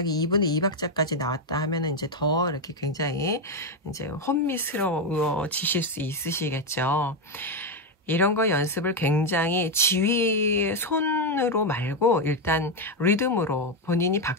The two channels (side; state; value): both; normal; correlation 0.05